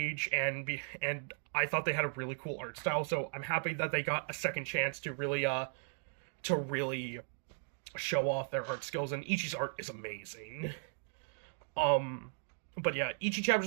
and I thought they had a really cool art style, so I'm happy that they got a second chance to really show off their art skills, and Ichi's art is amazing. But yeah, Ichi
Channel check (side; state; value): left; silent; 53 dB below the other